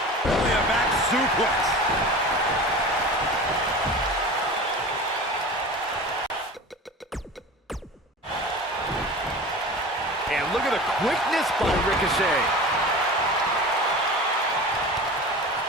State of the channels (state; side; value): normal; both; correlation 0.35